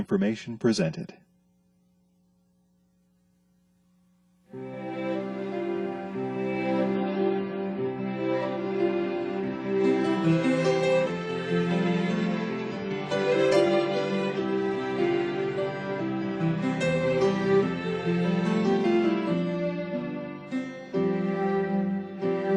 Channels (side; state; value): both; identical; correlation 1.00